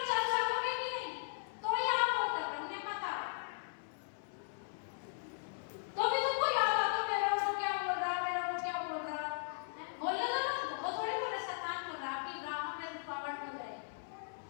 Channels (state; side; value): silent; right; 53 dB below the other